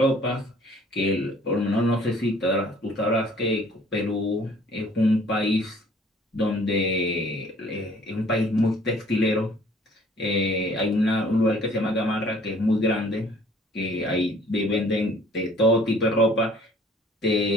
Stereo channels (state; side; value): normal; both; correlation 0.55